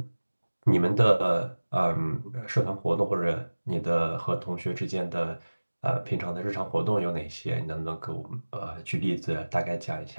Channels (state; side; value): inverted; both; correlation -1.00